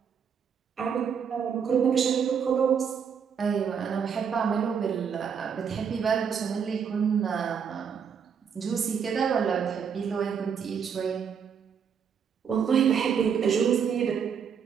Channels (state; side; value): quieter; left; 7.1 dB